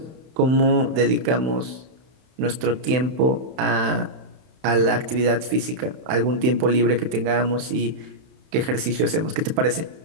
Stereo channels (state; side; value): late; left; 31 ms